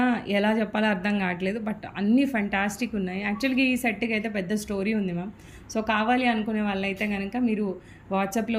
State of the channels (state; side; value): identical; both; correlation 1.00